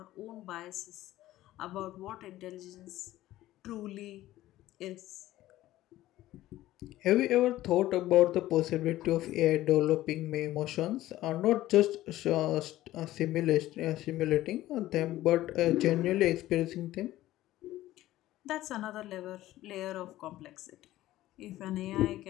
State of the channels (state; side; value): quieter; right; 15.3 dB